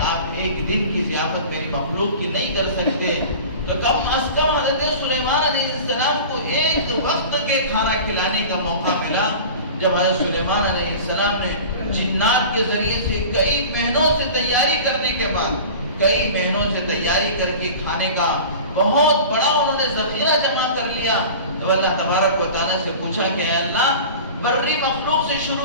آپ ایک دن کی ضیافت میری مخلوق کی نہیں کر سکتے، تو کم از کم حضرت سلیمان علیہ السلام کو ایک وقت کے کھانا کھلانے کا موقع ملا، جب حضرت سلیمان علیہ السلام نے جنات کے ذریعے سے کئی مہینوں سے تیاری کرنے کے بعد کئی مہینوں سے تیاری کر کے کھانے کا بہت بڑا انہوں نے ذخیرہ جمع کر لیا، تو اللہ تبارک و تعالیٰ سے پوچھا کہ اے اللہ بری مخلوق سے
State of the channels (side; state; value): both; inverted; correlation -0.37